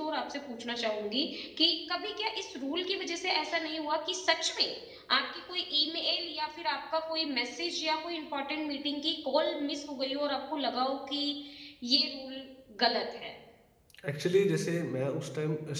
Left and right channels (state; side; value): identical; both; correlation 1.00